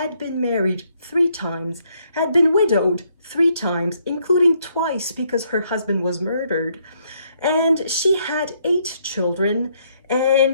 been married 3 times, had been widowed 3 times, including twice because her husband was murdered. And she had 8 children,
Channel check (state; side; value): inverted; both; correlation -0.71